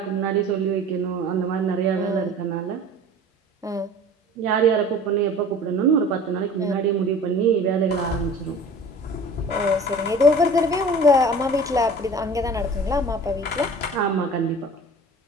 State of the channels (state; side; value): normal; both; correlation 0.43